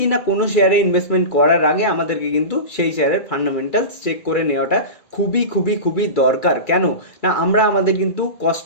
না, কোনো শেয়ারে ইনভেস্টমেন্ট করার আগে আমাদেরকে কিন্তু সেই শেয়ারের ফান্ডামেন্টালস চেক করে নেওয়াটা খুবই খুবই খুবই দরকার। কেন না, আমরা আমাদের কিন্তু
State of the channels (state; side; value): late; right; 2.3 ms